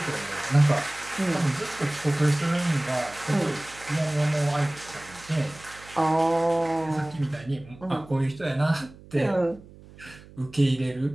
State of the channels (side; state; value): right; noise; hum, 21 dB below the sound